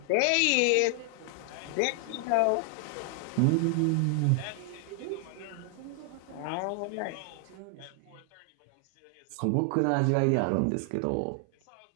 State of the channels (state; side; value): different; both; correlation 0.00